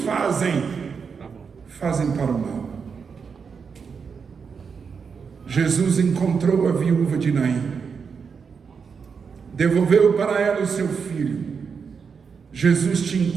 para o mal. Jesus encontrou a viúva de Naim, devolveu para ela o seu filho. Jesus te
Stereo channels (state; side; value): quieter; left; 5.9 dB